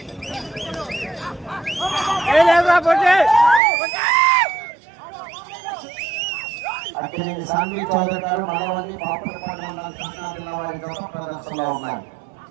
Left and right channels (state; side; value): drops out; left; at 3.6 s